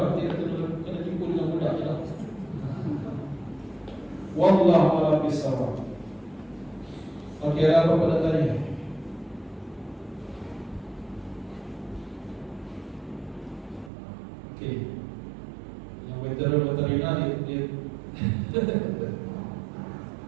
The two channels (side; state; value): left; drops out; at 13.9 s